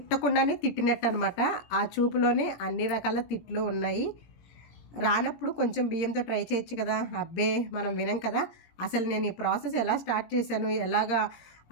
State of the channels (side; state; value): right; late; 17 ms